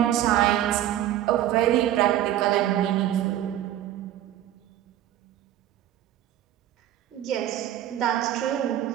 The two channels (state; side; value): quieter; left; 12.4 dB